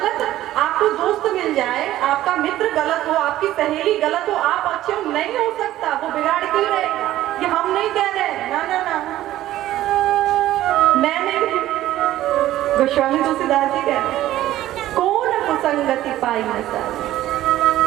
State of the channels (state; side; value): quieter; left; 14.2 dB